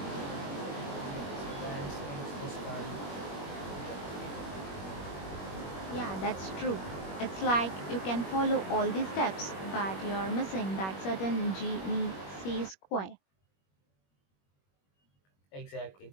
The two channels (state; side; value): late; right; 21 ms